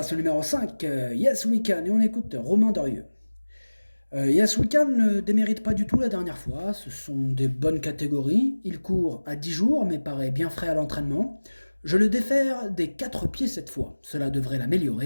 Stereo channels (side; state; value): both; inverted; correlation -1.00